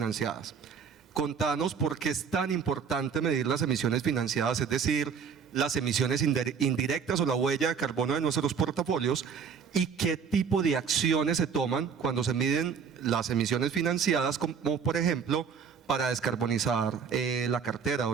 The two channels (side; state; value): left; quieter; 6.5 dB